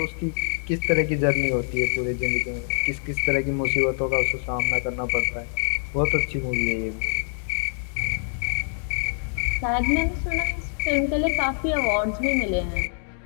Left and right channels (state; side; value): silent; right; 62 dB below the other